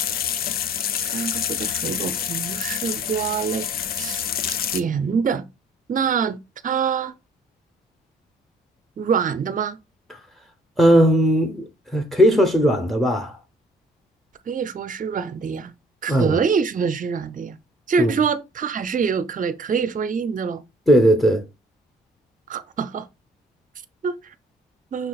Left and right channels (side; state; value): both; normal; correlation 0.58